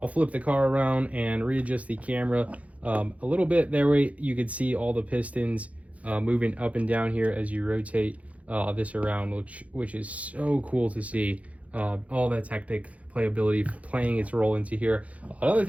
I'll flip the car around and readjust the camera a little bit. That way you can see all the pistons moving up and down here as you rotate this around, which is so cool to see. All that Technic playability playing its role into here. Another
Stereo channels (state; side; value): late; left; 0.067 ms